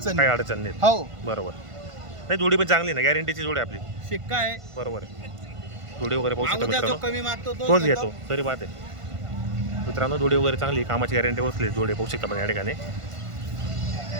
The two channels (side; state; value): left; late; 1.5 ms